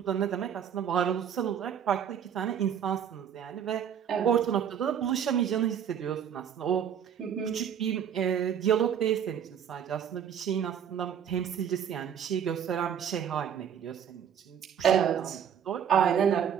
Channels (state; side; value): quieter; left; 8.6 dB